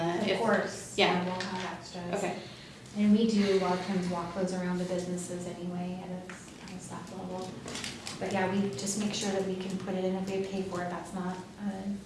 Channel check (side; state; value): both; identical; correlation 1.00